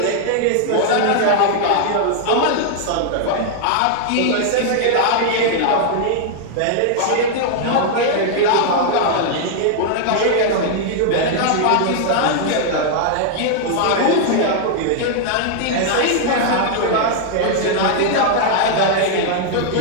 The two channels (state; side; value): different; both; correlation 0.00